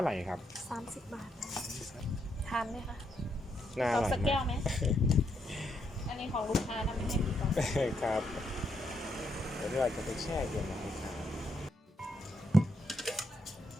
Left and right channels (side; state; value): both; normal; correlation 0.78